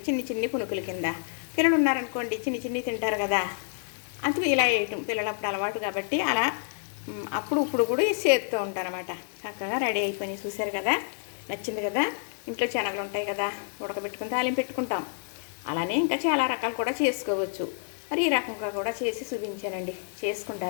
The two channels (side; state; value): right; silent; digital silence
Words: చిన్ని పునుకుల కింద. పిల్లలు ఉన్నారనుకోండి చిన్ని తింటారు కదా, అందుకు ఇలా వేయటం పిల్లలప్పుడు అలవాటు కాబట్టి అలా అప్పుడు ఇప్పుడు కూడా చేస్తూ ఉంటానన్నమాట. చక్కగా రెడీ అయిపోయినాయి, చూశారు కదా. నచ్చింది కదా. ఇంట్లో శనగలు ఉంటాయి కదా, ఉడకబెట్టుకుని తాలింపు పెట్టుకుంటాం. అలానే ఇంకా చాలా రకాలు కూడా చేసుకోవచ్చు. మరి ఈ రకంగా కూడా చేసి చూపించానండి,